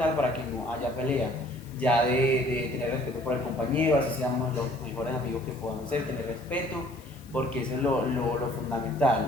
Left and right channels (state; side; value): noise; left; hiss, 24 dB below the sound